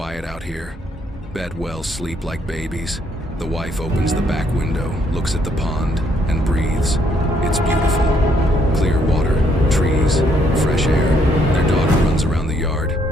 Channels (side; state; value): both; normal; correlation 0.70